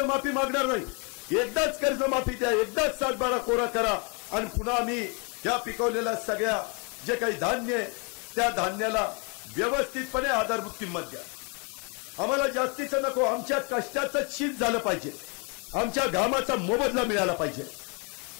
मागणार नाही. एकदाच कर्जमाफी द्या, एकदाच 7/12 कोरा करा. आणि पुन्हा आम्ही या पिकवलेल्या सगळ्या जे काही धान्य आहे त्या धान्याला व्यवस्थितपणे आधारभूत किंमत द्या. आम्हाला जास्तीचं नको, आमच्या कष्टाचं शीत झालं पाहिजे, आमच्या घामाचा मोबदला मिळाला पाहिजे.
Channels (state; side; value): quieter; right; 34.1 dB